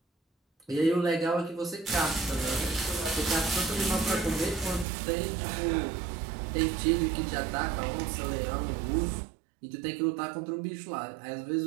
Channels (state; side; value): drops out; left; at 4.9 s